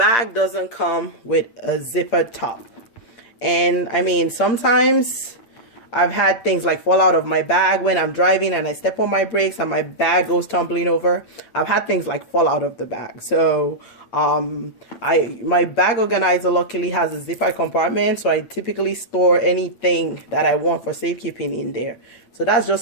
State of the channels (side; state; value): right; late; 8.7 ms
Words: doesn't come with a zippered top. And I mean, sometimes I've had things like fall out of my bag when I'm driving and I step on my brakes and my bag goes tumbling over. I've had things like fall out of the bag. So my bag organizer luckily has a zipper compartment, so I typically store anything that I want for safekeeping in there. So that's just